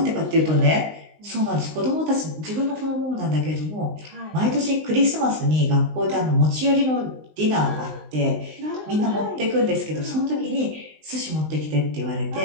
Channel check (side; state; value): left; late; 19 ms